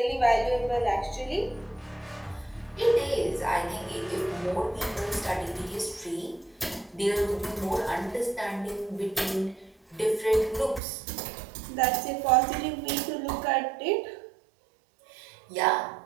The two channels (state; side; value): drops out; left; at 10.8 s